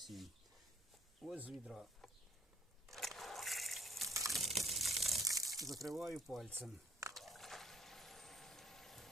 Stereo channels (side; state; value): both; normal; correlation 0.63